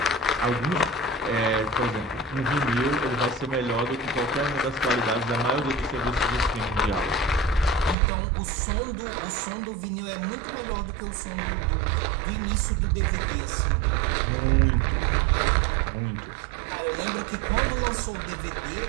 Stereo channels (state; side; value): drops out; left; at 8.0 s